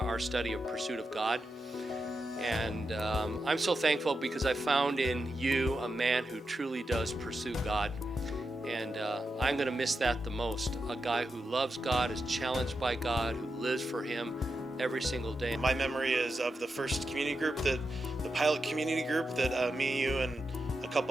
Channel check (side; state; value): both; normal; correlation 0.88